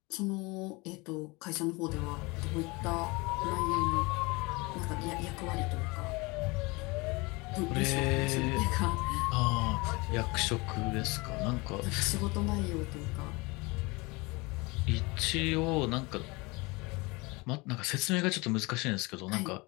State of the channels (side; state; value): right; quieter; 25.4 dB